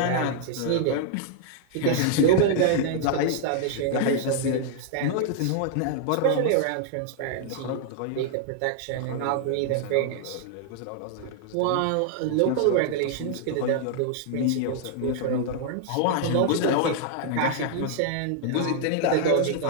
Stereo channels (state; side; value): different; both; correlation 0.00